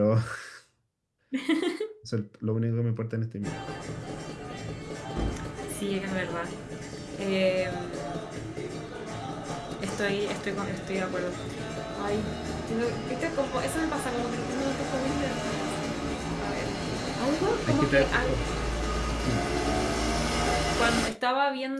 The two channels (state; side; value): identical; both; correlation 1.00